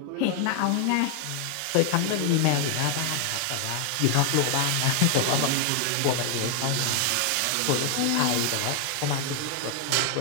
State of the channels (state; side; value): different; both; correlation 0.00